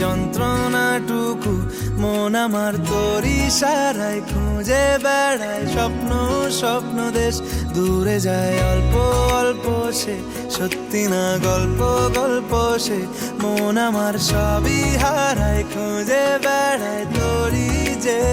যন্ত্রণাটুকু, মন আমার তোর ইশারায় খুঁজে বেড়ায় স্বপ্ন স্বপ্ন দেশ। দূরে যায় অল্প অল্প সে, সত্যি না গল্প গল্প সে, মন আমার সবই হারায় খুঁজে বেড়ায় তোরই যে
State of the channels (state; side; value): identical; both; correlation 1.00